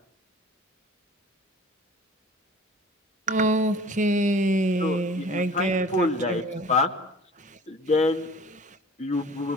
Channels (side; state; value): both; normal; correlation 0.46